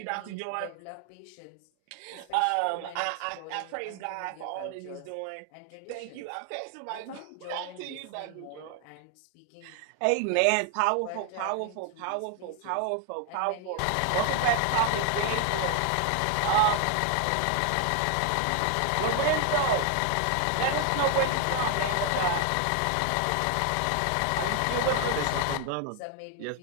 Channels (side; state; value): both; different; correlation 0.00